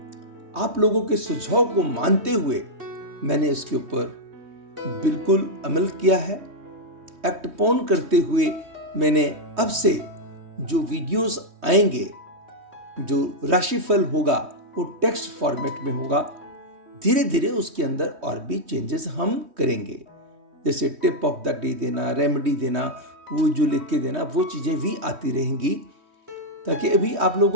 आप लोगों के सुझाव को मानते हुए मैंने इसके ऊपर बिल्कुल अमल किया है। एक्ट ऑन करते हुए मैंने अब से जो वीडियोस आएंगे, जो राशिफल होगा, वो टेक्स्ट फॉर्मेट में होगा। धीरे धीरे उसके अंदर और भी चेंजेस हम करेंगे, जैसे टिप ऑफ द डे देना, रेमेडी देना, वो जो लिख के देना, वो चीज़ें भी आती रहेंगी, ताकि अभी आप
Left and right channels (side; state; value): left; late; 3.2 ms